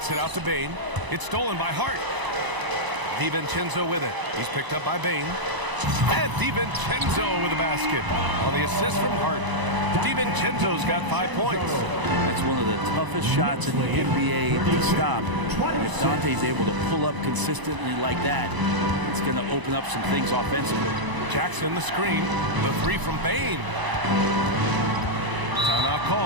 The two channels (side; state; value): left; late; 1.0 ms